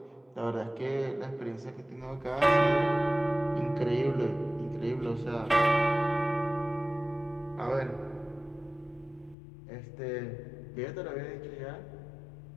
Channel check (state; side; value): drops out; right; at 9.3 s